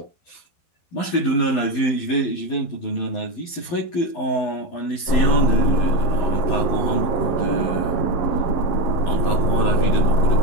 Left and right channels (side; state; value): right; late; 12 ms